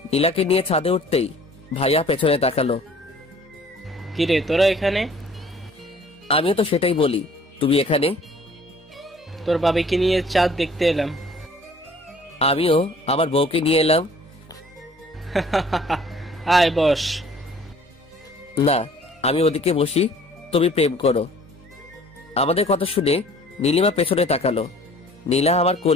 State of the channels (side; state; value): both; normal; correlation 0.53